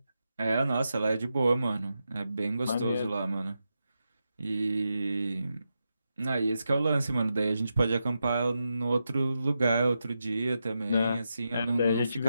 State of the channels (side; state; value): both; inverted; correlation -0.87